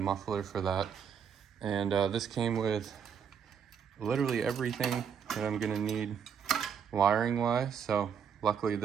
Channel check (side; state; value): left; quieter; 7.3 dB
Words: for that. And this came with literally everything that I'm gonna need wiring wise. So luckily